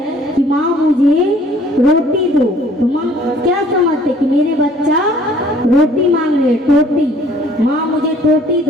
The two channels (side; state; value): both; normal; correlation 0.56